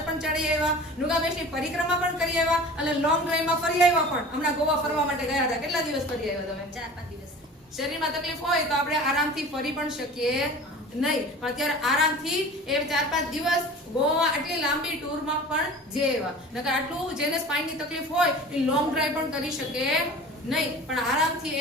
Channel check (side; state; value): both; normal; correlation 0.40